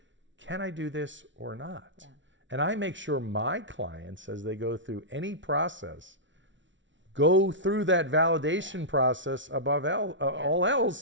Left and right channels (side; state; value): left; late; 0.55 ms